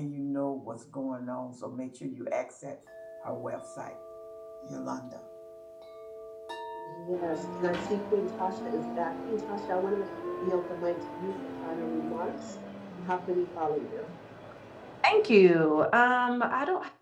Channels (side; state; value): both; identical; correlation 1.00